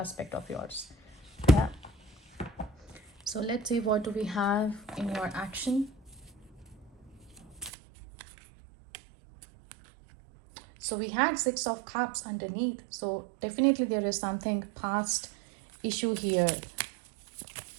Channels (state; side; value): drops out; left; at 7.7 s